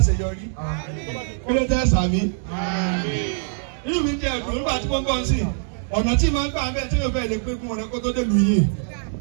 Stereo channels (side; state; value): left; silent; digital silence